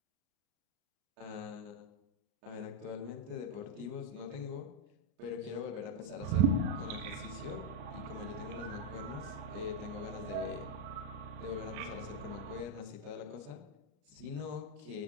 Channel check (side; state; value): left; late; 33 ms